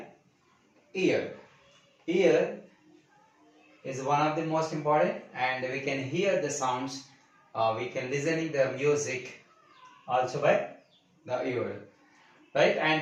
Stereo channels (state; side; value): identical; both; correlation 1.00